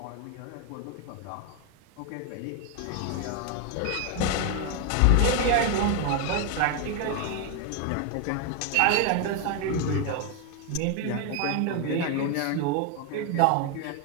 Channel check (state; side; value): different; both; correlation 0.01